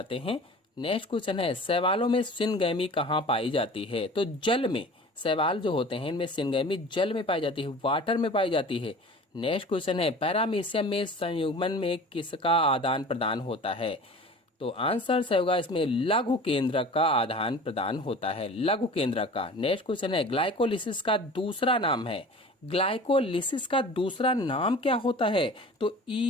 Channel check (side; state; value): both; normal; correlation 0.41